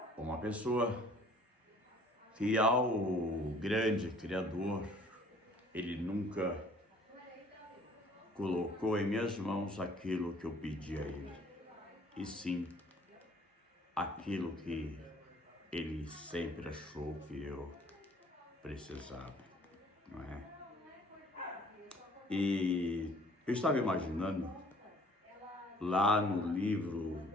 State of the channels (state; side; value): normal; both; correlation 0.56